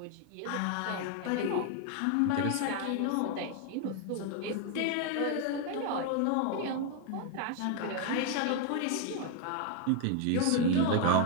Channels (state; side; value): different; both; correlation 0.01